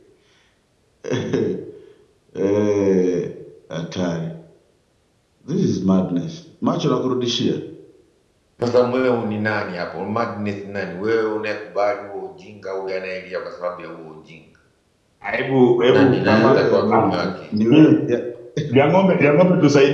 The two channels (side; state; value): both; identical; correlation 1.00